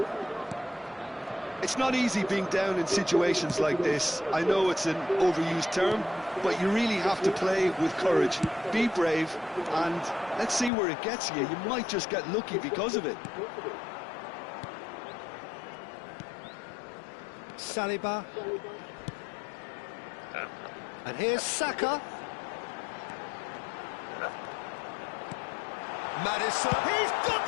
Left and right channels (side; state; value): right; drops out; at 10.7 s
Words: It's not easy being down in situations like this. I know it's an overused term, but you really have to play with courage. Be brave, and let's see where it gets you. You might just get lucky because of it. Saliba. And here's Saka. Madison. He's got